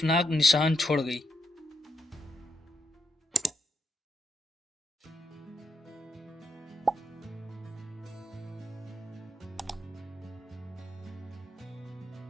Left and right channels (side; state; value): both; normal; correlation 0.81